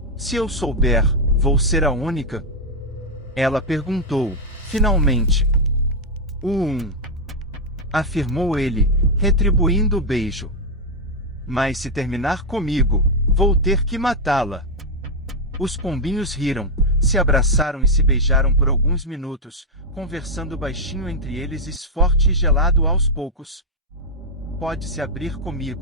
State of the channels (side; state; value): both; normal; correlation 0.01